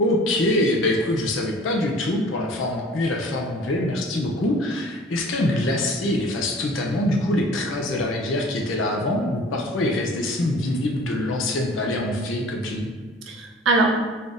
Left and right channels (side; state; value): both; normal; correlation 0.47